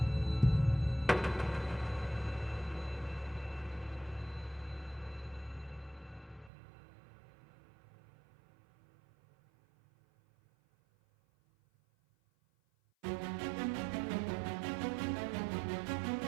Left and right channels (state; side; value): drops out; left; at 6.5 s